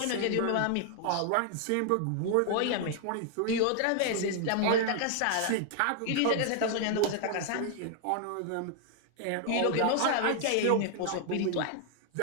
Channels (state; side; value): different; both; correlation 0.00